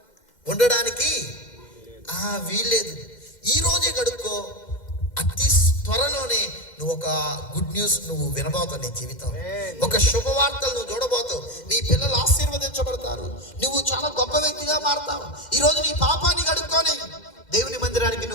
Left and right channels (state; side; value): late; right; 2.1 ms